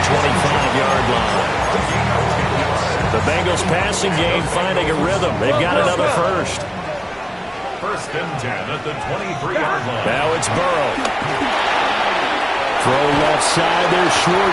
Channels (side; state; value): both; identical; correlation 1.00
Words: 25-yard line. The Bengals passing game finding a rhythm. They've got another first. First and 10 at the 23-yard line. Now it's Burrow. Throw left side. There's